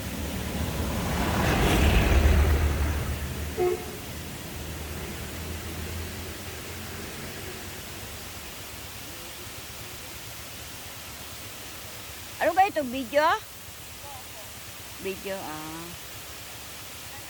Ano ba ito? Video? Video, ah.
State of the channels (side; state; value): both; identical; correlation 1.00